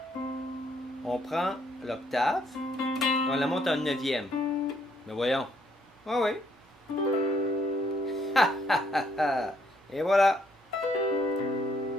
On prend l'octave. On la monte à une neuvième. Mais voyons. Ah oui. Et voilà.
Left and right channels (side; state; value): both; normal; correlation 0.69